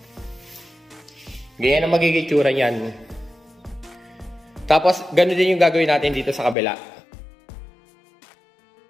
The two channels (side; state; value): right; drops out; at 6.6 s